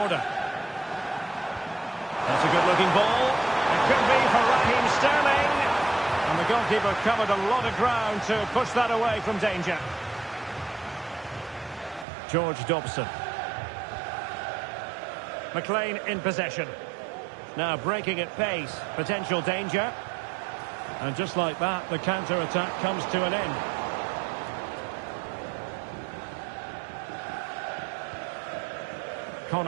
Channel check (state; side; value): drops out; left; at 12.1 s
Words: That's a good-looking ball. It could be for Raheem Sterling. And the goalkeeper covered a lot of ground to push that away from danger. George Dobson. McLean in possession. Now breaking at pace. Potential danger. And just like that, the counter-attack comes to an end.